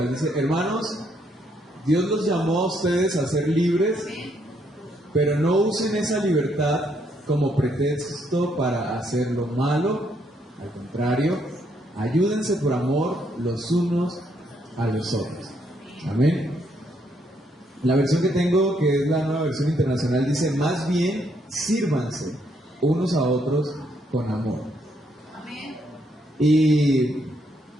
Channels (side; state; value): both; normal; correlation 0.73